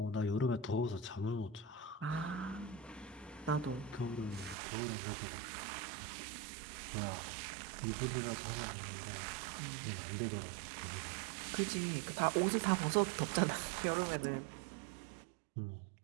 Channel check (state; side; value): drops out; left; at 4.5 s